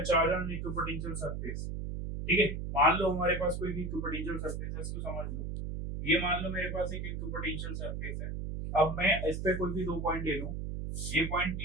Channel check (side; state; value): right; noise; hum, 4 dB below the sound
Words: charge on equipotential surface. ठीक है, मान लो हमारे पास कोई भी इक्विपोटेंशियल सरफेस है, इसको समझ लो। ये मान लो मेरे पास एक इक्विपोटेंशियल सरफेस है। अब मैं इस पे कोई भी दो पॉइंट ले लूं, ये पॉइंट